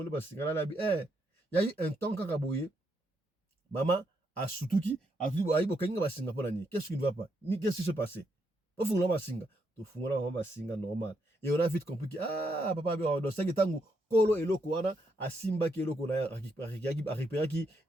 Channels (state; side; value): normal; both; correlation 0.78